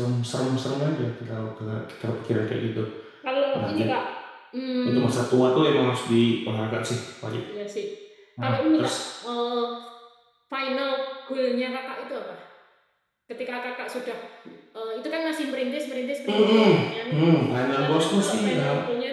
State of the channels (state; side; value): identical; both; correlation 1.00